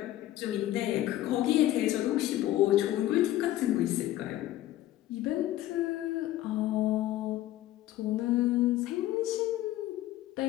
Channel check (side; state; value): right; quieter; 14.4 dB